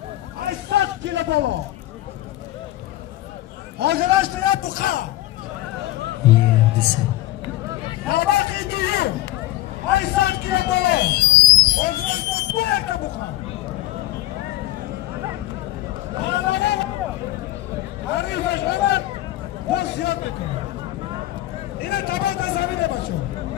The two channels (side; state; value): right; quieter; 15.7 dB